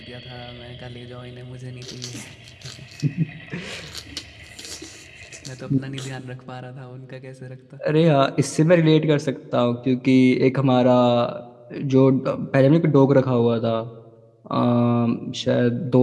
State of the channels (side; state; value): both; identical; correlation 1.00